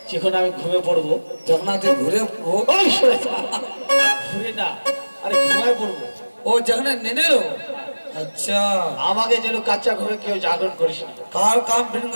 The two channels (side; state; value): both; inverted; correlation -1.00